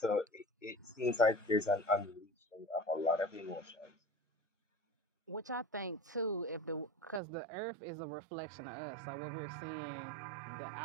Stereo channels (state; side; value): drops out; left; at 7.2 s